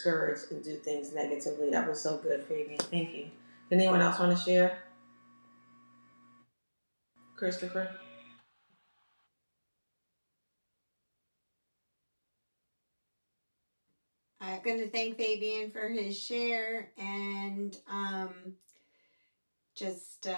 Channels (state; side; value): inverted; both; correlation -1.00